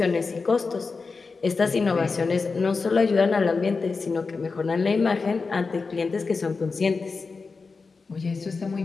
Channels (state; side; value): quieter; right; 4.4 dB